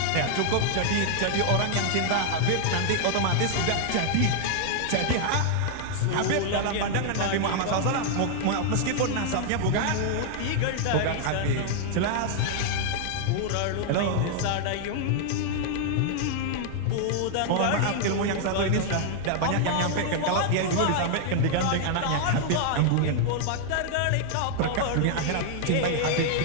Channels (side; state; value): both; different; correlation 0.00